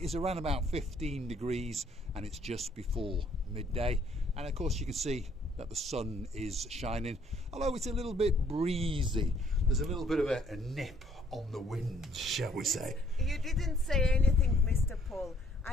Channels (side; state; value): both; normal; correlation 0.64